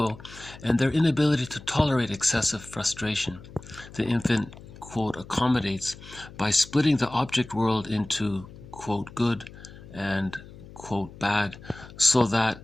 and their inability to tolerate excessive frustration. The infant, quote, accommodates by splitting the object world into, quote, good and, quote, bad, so that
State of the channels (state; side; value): noise; left; hum, 18 dB below the sound